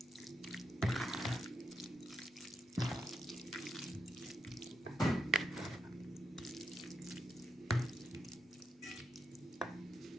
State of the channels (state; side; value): normal; both; correlation 0.83